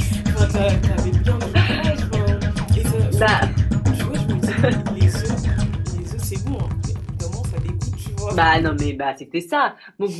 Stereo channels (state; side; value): identical; both; correlation 1.00